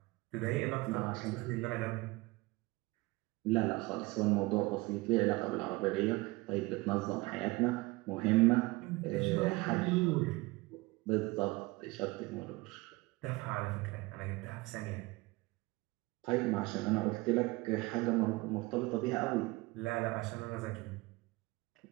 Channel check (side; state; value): left; quieter; 22.4 dB